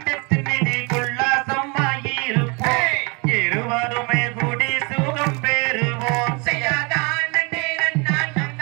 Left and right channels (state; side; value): quieter; left; 30.5 dB